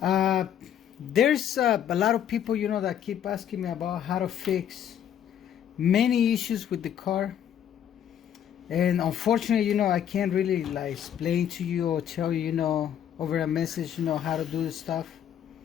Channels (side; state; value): right; quieter; 9.7 dB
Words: There's a lot of people, that keep asking me about how to fix many issues with the car. And unfortunately, I can't really like explain to you or tell you, over a message, how to do this stuff.